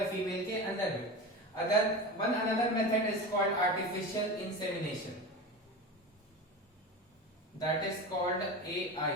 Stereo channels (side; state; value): both; normal; correlation 0.27